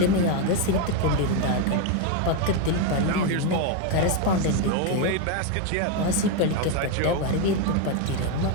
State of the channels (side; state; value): both; different; correlation 0.02